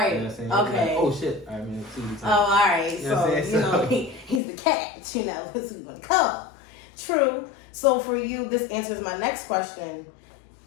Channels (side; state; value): right; drops out; at 4.4 s